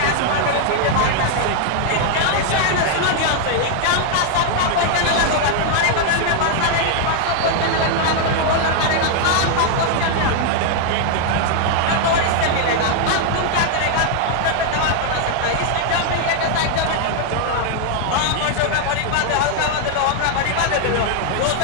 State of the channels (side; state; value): both; different; correlation 0.00